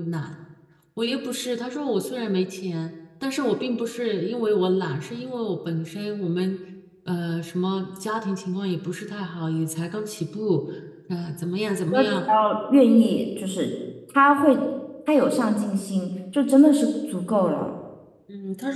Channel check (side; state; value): both; identical; correlation 1.00